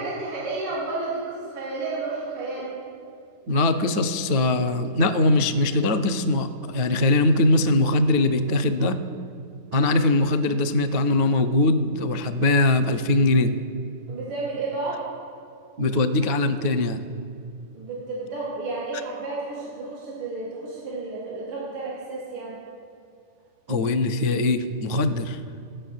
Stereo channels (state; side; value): late; left; 9.5 ms